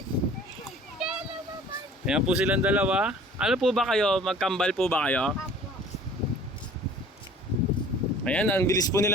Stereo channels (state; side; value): normal; both; correlation 0.49